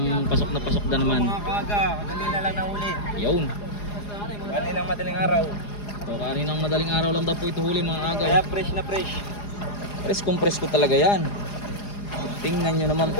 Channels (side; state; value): right; late; 4.9 ms